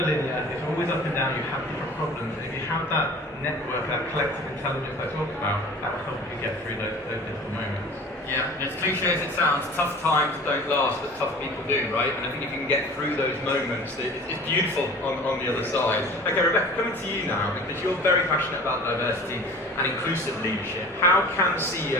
linear, it's always up and down, you have different problems. And if you have that network, that collective intelligence I talked about, that will help you get through those difficult moments. Yeah, and as cliche as it sounds, tough times don't last, but tough people do, right? And I think if you can get through those moments, it's beautiful on the other side. Okay, Rebecca, coming to you now, because you're very passionate about diversity and inclusive leadership. How can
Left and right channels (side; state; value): both; normal; correlation 0.42